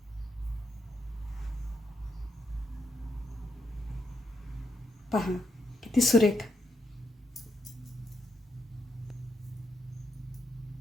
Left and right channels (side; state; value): both; normal; correlation 0.80